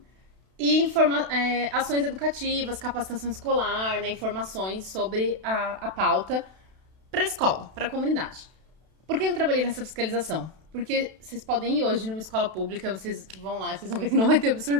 e ações educativas, capacitação escolar, né, informações sobre a pauta para a escola, para a comunidade. Por que eu trabalhei nessa fiscalização? Porque vocês podem ir hoje numa escola pública, vocês vão lá e vocês vão ver que não vai ter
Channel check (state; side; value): late; left; 32 ms